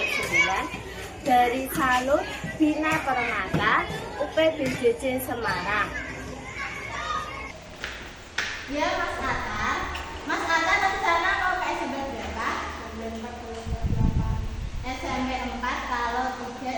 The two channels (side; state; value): both; identical; correlation 1.00